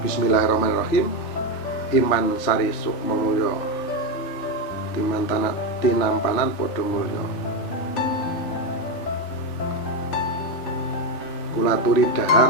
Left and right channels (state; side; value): late; right; 3.5 ms